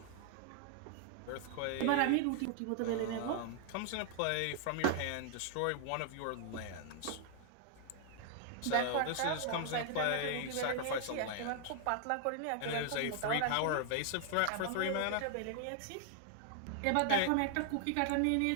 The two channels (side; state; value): both; different; correlation 0.00